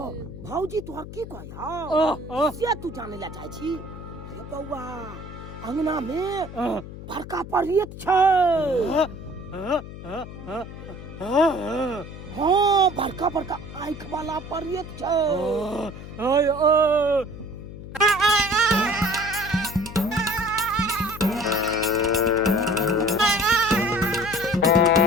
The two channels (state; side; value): noise; left; hum, 12 dB below the sound